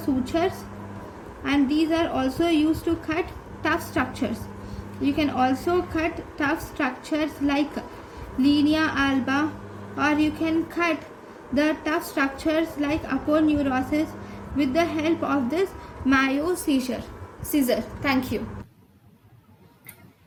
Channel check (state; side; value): identical; both; correlation 1.00